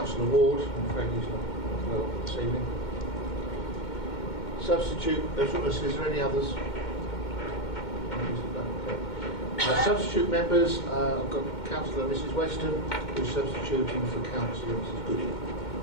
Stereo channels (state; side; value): late; right; 2.1 ms